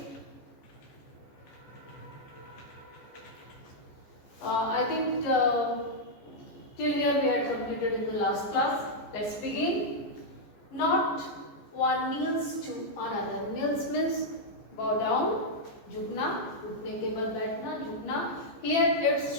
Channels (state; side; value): late; right; 14 ms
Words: Till here we had completed in the last class. Let's begin. Not one kneels to another. Kneels means bow down, jhukna, उठने के बाद बैठना, झुकना. Here it's